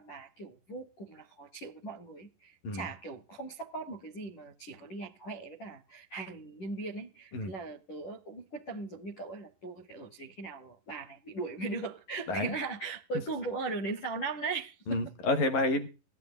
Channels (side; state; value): right; late; 10 ms